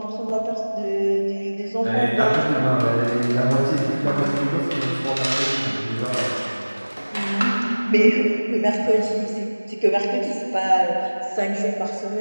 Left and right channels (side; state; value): both; inverted; correlation -1.00